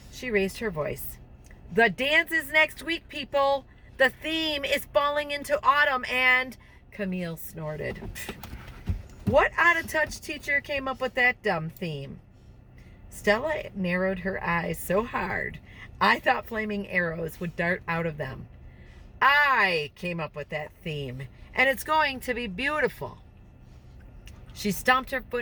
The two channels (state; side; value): identical; both; correlation 1.00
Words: she raised her voice. The dance is next week, people. The theme is falling into autumn and... Camille snorted. What out-of-touch teacher came up with that dumb theme? Stella narrowed her eyes so hard, I thought flaming arrows would dart out of them. I came up with that theme, and it's going to be beautiful. She stomped her